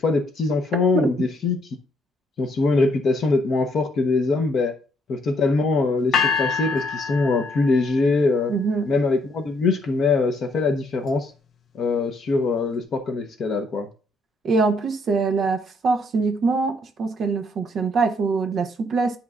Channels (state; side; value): normal; both; correlation 0.70